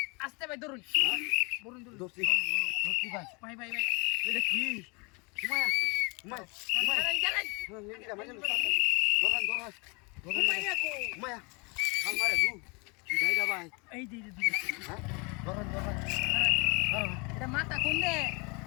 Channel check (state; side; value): quieter; right; 30.0 dB